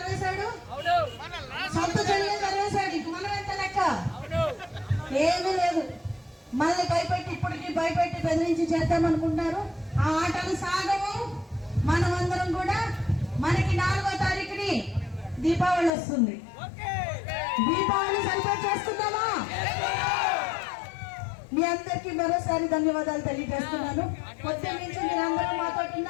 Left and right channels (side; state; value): right; drops out; at 15.9 s